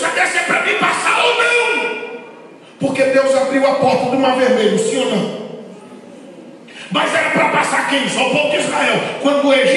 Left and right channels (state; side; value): identical; both; correlation 1.00